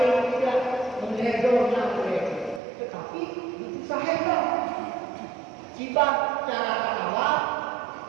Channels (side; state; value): left; drops out; at 2.6 s